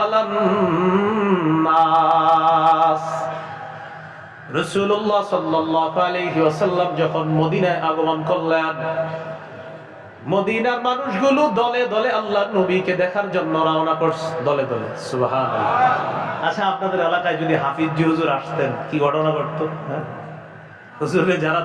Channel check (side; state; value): both; identical; correlation 1.00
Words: নাস, রাসূলুল্লাহ সাল্লাল্লাহু আলাইহি ওয়াসাল্লাম যখন মদিনায় আগমন করলেন, মদিনার মানুষগুলো দলে দলে আল্লাহর নবীকে দেখার জন্য রওনা করছে, দলে দলে। সুবহানাল্লাহ। আচ্ছা, আপনাদের এলাকায় যদি হাফিজি হুজুর আসতেন কি ঘটনা ঘটতো? হুজুরে যারা